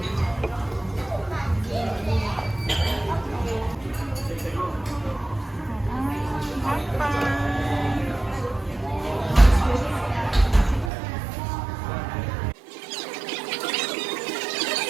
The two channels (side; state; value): left; drops out; at 10.9 s